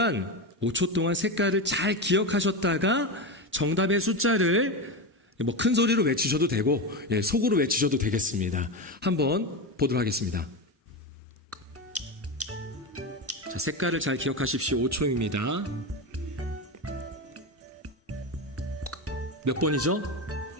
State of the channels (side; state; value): both; normal; correlation 0.17